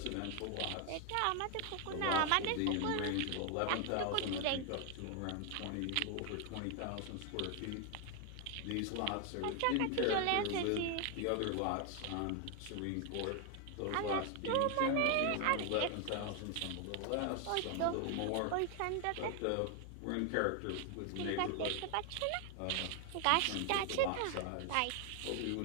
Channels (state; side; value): different; both; correlation 0.01